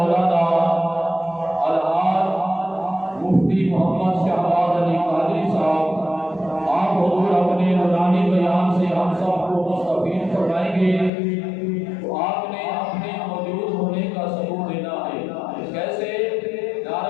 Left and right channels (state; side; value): drops out; right; at 11.1 s